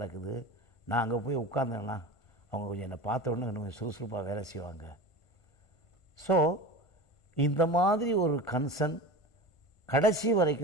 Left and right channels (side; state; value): right; late; 1.5 ms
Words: நான் அங்கே போய் உட்காந்தேன்னா அவங்க கொஞ்சம் என்னை பார்த்த உடனே கொஞ்சம் சுறுசுறுப்பாக வேலை செய்வாங்க. ஸோ இந்த மாதிரி ஒரு கன்சர்ன் கடைசி